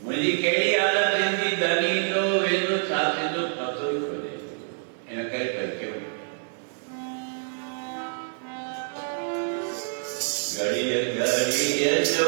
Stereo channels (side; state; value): left; silent; digital silence